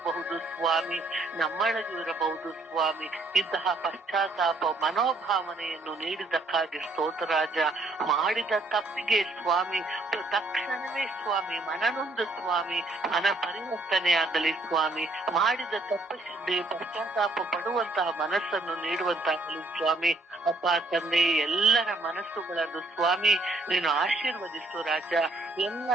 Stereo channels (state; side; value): quieter; left; 3.0 dB